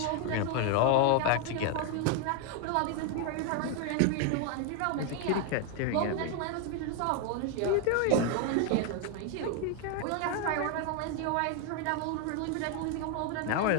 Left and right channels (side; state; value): both; different; correlation 0.01